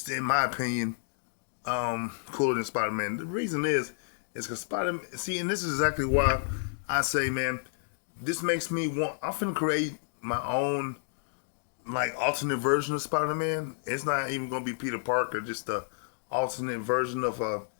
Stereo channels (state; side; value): silent; right; digital silence